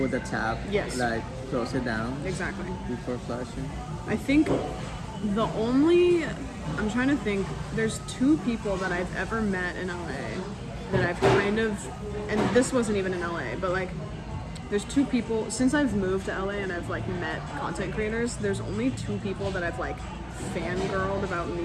the tap, like close it down. Exactly. Before flushing. I think I'm trying to think, there's 2 people that I've ever met in LA that I've kind of, and this wasn't even in LA, but like there's 2 people, since I've moved to LA and I've like met content creators, there's only 2 people that I've like fangirled about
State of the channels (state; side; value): identical; both; correlation 1.00